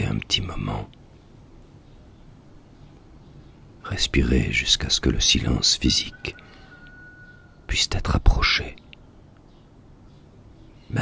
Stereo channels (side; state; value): both; identical; correlation 1.00